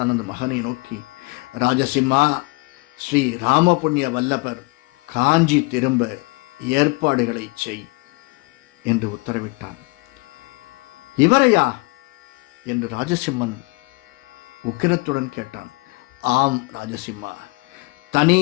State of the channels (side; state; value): right; quieter; 27.3 dB